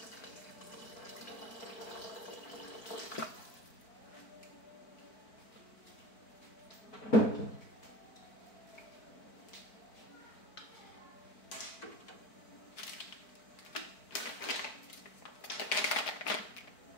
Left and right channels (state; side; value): late; right; 4.5 ms